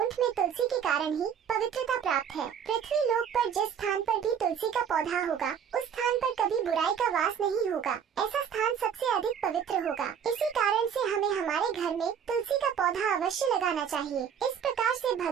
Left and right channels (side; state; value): left; quieter; 7.9 dB